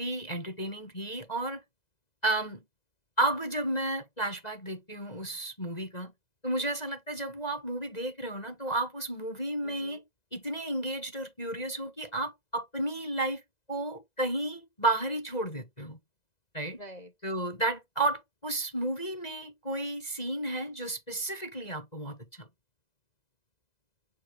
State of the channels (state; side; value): late; right; 2.0 ms